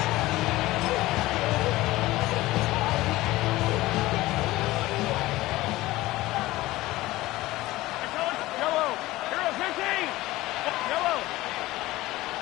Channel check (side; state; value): right; quieter; 18.0 dB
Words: Yellow. Hero 15. Yellow.